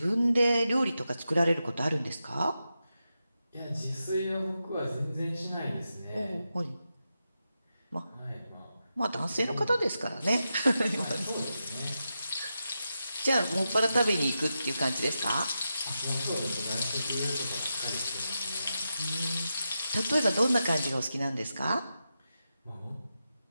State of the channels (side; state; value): both; inverted; correlation -0.89